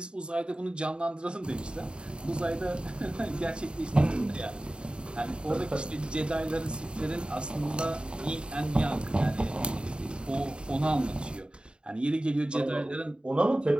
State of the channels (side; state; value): left; late; 0.051 ms